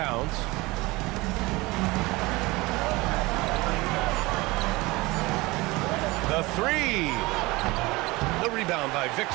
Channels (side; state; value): left; quieter; 22.2 dB